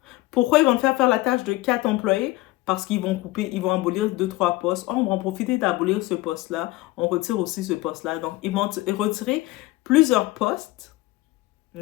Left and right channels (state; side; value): quieter; right; 19.2 dB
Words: Pourquoi ils vont te faire la tâche de 4 employés? Parce qu'ils vont couper, ils vont abolir 2-3 postes. Oh, on va en profiter d'abolir ce poste-là. On retire aussi ce poste-là. Donc, ils vont retirer plusieurs postes,